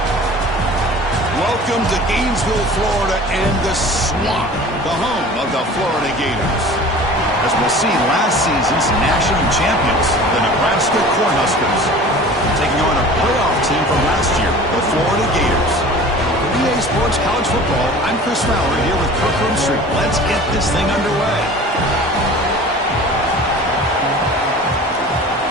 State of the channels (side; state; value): both; normal; correlation 0.42